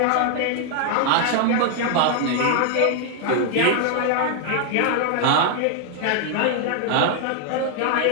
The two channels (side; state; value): both; different; correlation 0.00